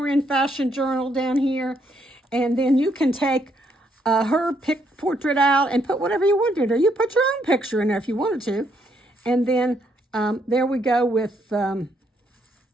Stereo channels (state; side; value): normal; both; correlation 0.74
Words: Fashion Journal down here. And then you can take her portrait out and put whatever you wanted, or you put your own picture in there if you wanted to. And then there we go with